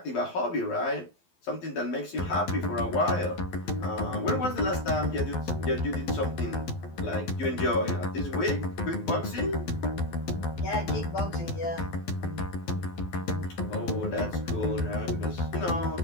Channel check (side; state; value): right; late; 12 ms